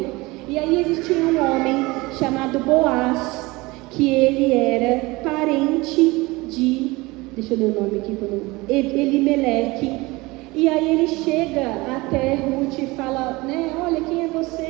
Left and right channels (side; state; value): left; quieter; 22.4 dB